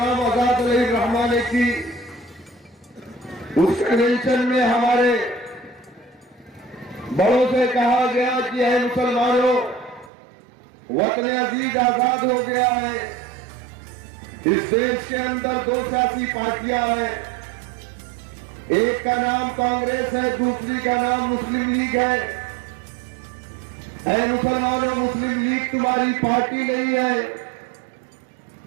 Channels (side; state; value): left; drops out; at 10.1 s